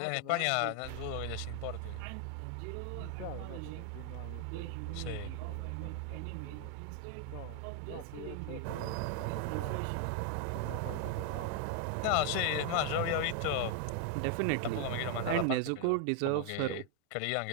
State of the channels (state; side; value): different; both; correlation 0.00